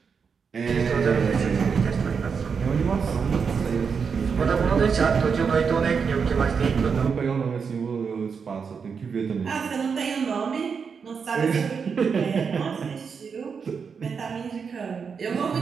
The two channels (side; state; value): left; quieter; 6.0 dB